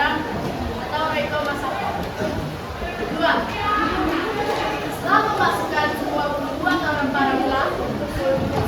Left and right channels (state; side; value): identical; both; correlation 1.00